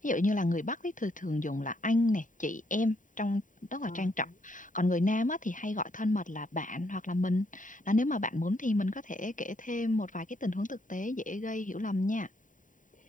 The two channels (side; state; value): right; late; 0.38 ms